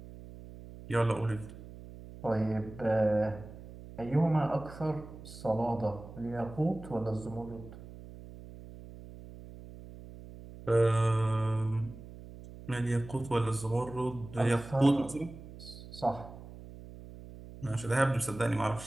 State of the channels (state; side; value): noise; right; hum, 15 dB below the sound